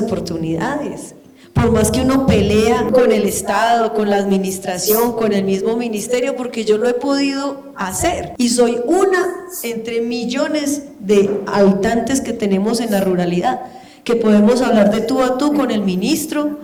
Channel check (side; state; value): both; identical; correlation 1.00